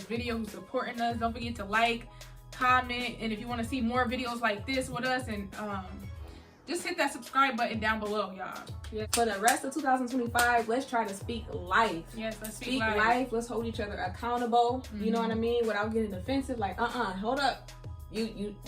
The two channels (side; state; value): both; identical; correlation 1.00